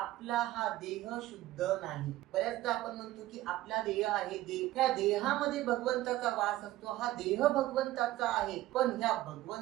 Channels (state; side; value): quieter; left; 16.0 dB